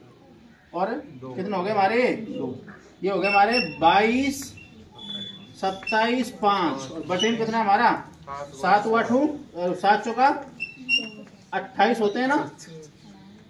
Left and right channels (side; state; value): both; identical; correlation 1.00